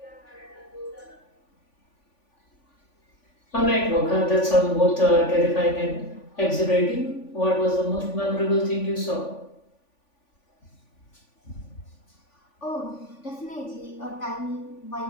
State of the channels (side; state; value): right; late; 3.5 ms